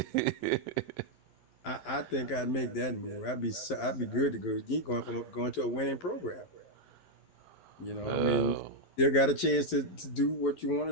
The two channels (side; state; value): right; late; 11 ms